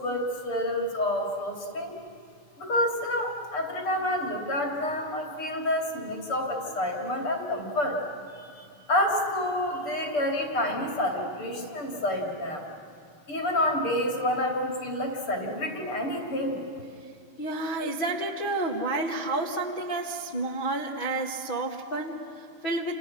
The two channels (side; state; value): right; late; 6.8 ms